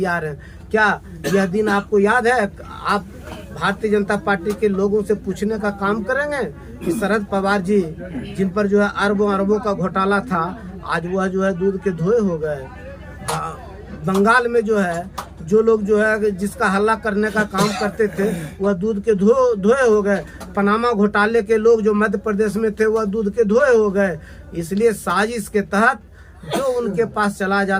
हैं। क्या यह दिन आपको याद है? आप भारतीय जनता पार्टी के लोगों से पूछने का काम करेंगे कि शरद पवार जी जिन पर जो है अरबों अरबों का घोटाला था, आज वह जो है दूध के धोए हो गए। बंगाल में जो है जो लोग जो है जिसका हल्ला करने का काम करते थे वह दूध के धोए हो गए। पनामा घोटाले के लोग जो मध्य प्रदेश में थे वह दूध के धोए हो गए। इसलिए साजिश के तहत जो उनके पास चला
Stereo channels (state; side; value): identical; both; correlation 1.00